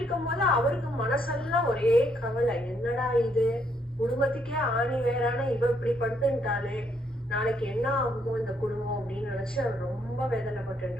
அவருக்கு மனசெல்லாம் ஒரே கவலை. என்னடா இது, குடும்பத்துக்கே ஆணி வேறான இவ இப்படி படுத்துட்டாலே நாளைக்கு என்ன ஆகுமோ இந்த குடும்பம் அப்படின்னு நினைச்சு அவர் ரொம்ப வேதனைப்பட்டு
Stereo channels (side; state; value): both; normal; correlation 0.72